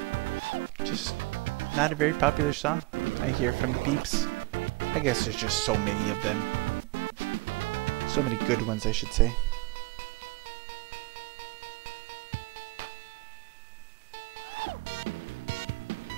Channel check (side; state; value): left; quieter; 23.8 dB